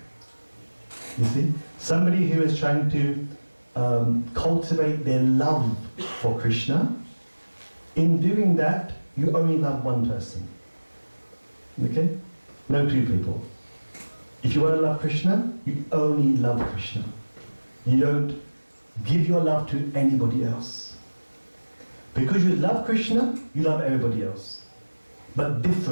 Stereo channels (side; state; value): both; inverted; correlation -1.00